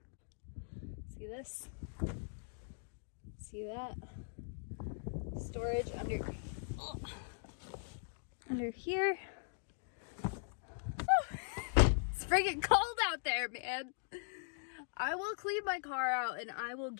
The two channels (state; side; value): silent; right; digital silence